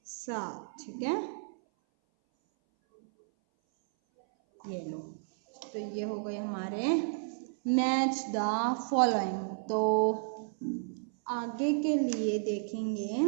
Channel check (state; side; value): silent; left; 56 dB below the other